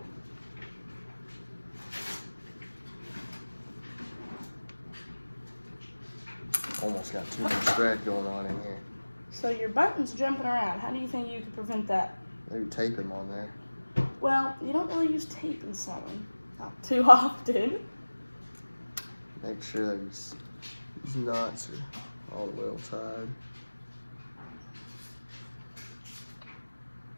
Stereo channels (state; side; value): inverted; both; correlation -1.00